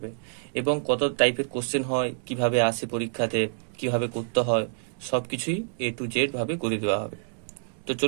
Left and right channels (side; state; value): left; silent; digital silence